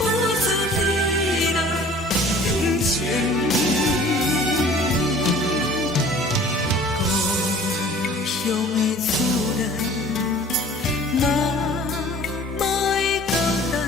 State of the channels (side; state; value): both; normal; correlation 0.48